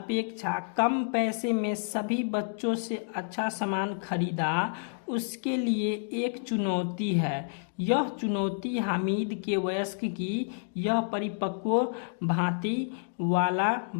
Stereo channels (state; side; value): silent; right; digital silence